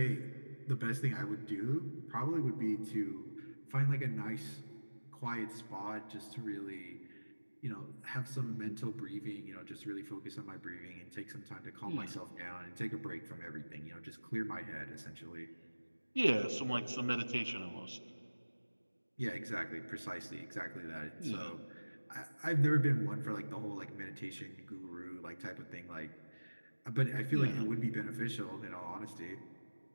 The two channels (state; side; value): inverted; both; correlation -1.00